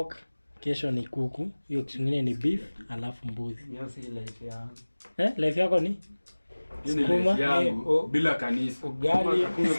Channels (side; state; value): both; inverted; correlation -1.00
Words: kesho ni kuku, hiyo kingine ni beef, alafu mbuzi. Hiyo si life yangu. Life yako ni? Skuma bila kanisa. Ugali,